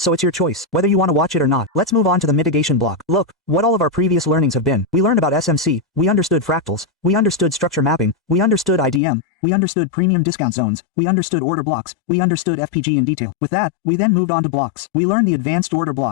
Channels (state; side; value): drops out; right; at 9.0 s